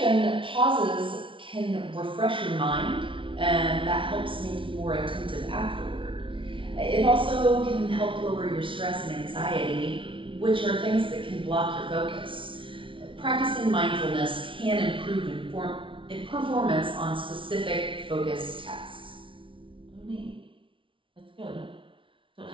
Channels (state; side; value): late; left; 0.25 ms